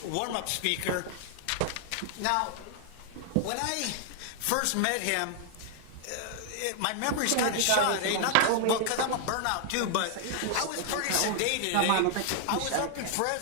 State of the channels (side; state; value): both; different; correlation 0.00